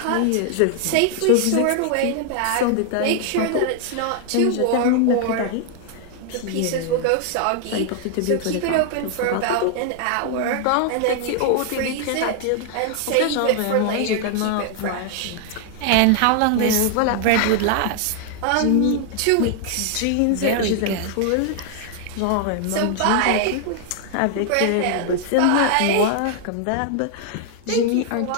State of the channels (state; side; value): different; both; correlation 0.00